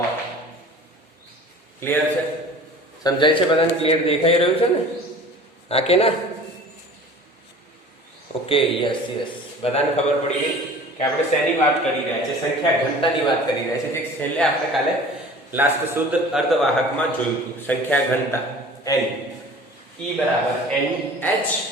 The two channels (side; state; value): both; normal; correlation 0.43